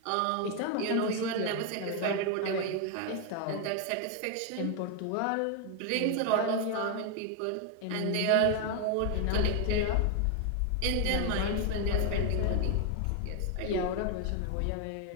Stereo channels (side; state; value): both; different; correlation 0.01